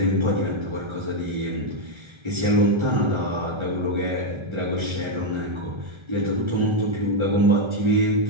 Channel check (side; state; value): left; late; 1.3 ms